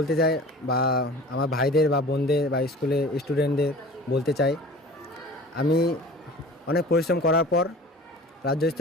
চাই, বা আমার ভাইদের বা বোনদের বা স্কুলে স্টুডেন্টদের বলতে চাই, আমি অনেক পরিশ্রম করার পর রাজ্য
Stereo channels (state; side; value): normal; both; correlation 0.41